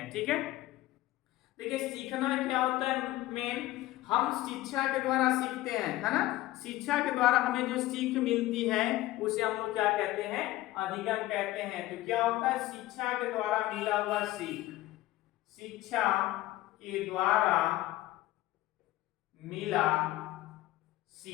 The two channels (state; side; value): quieter; right; 16.6 dB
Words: ठीक है, देखिए सीखना क्या होता है? मेन हम शिक्षा के द्वारा सीखते हैं, है ना। शिक्षा के द्वारा हमें जो सीख मिलती है उसे हम लोग क्या कहते हैं? अधिगम कहते हैं। तो क्या होता है? शिक्षा के द्वारा मिला हुआ सीख, शिक्षा के द्वारा मिला